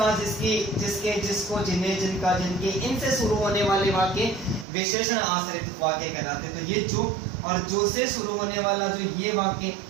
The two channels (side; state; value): left; drops out; at 4.7 s